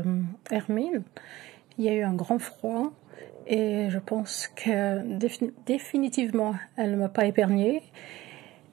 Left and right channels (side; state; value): left; quieter; 17.4 dB